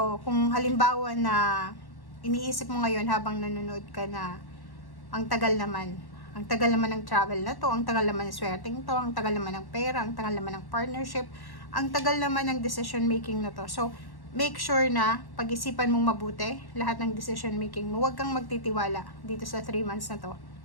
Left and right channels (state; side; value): late; right; 1.1 ms